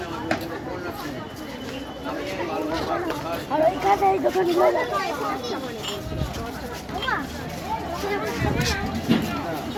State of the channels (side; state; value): both; identical; correlation 1.00